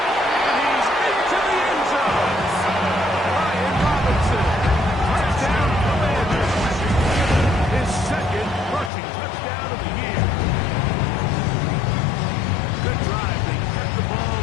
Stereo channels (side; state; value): right; drops out; at 8.9 s